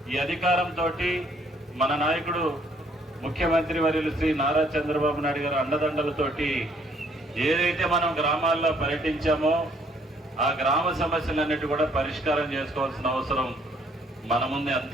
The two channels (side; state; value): both; normal; correlation 0.64